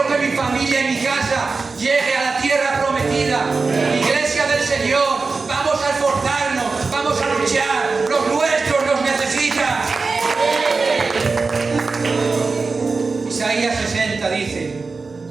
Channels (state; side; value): quieter; left; 4.2 dB